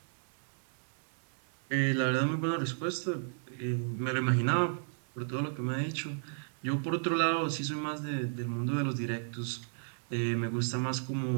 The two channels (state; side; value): silent; left; 55 dB below the other